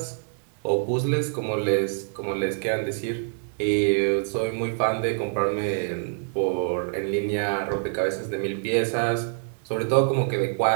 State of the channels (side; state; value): left; silent; digital silence